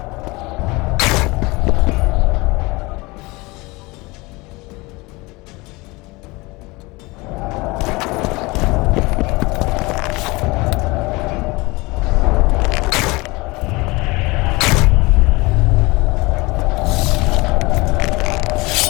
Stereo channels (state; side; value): quieter; right; 23.6 dB